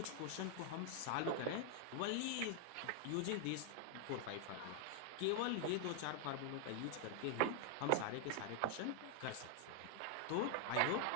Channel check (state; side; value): different; both; correlation 0.00